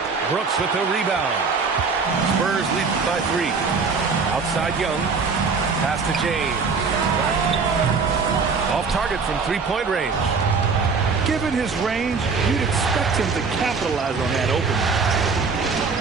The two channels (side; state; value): left; quieter; 4.9 dB